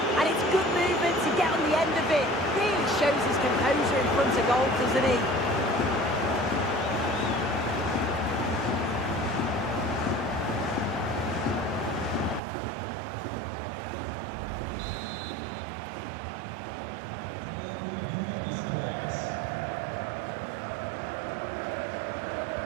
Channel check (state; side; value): drops out; left; at 12.4 s